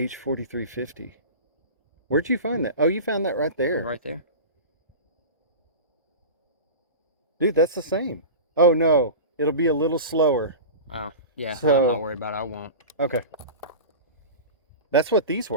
Where'd you find that? Oh, you found that right there. Right there. Dude, that's the same. Oh, no. It'll be a little slower. Oh, yeah. So, I'm not worried about it. I won't. Okay. That's what these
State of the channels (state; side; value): inverted; both; correlation -0.31